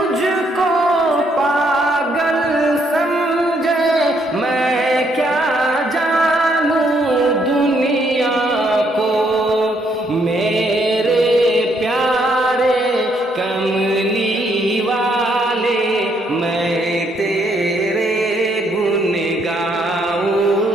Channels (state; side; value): normal; both; correlation 0.71